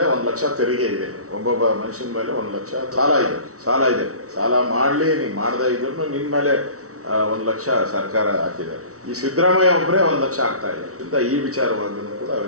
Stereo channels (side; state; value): left; late; 0.65 ms